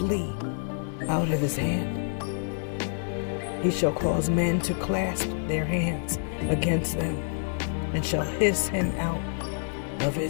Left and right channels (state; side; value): silent; right; 56 dB below the other